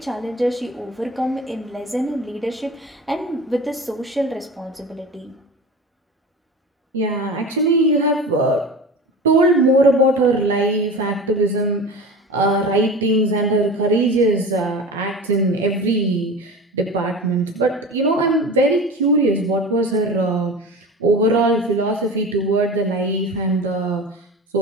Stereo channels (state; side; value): normal; both; correlation 0.33